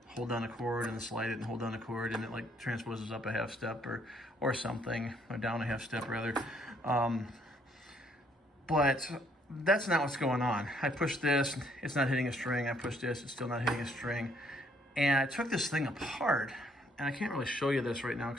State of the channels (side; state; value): both; normal; correlation 0.67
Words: hold down a chord and then slide it and hold down a chord and it like transposes up a half step or something, or down a half step rather. But that's not what's going on. I pushed this, it's not hitting a string. I pushed this, it's still not hitting a string. And I took this thing apart, and I can't really show you this right now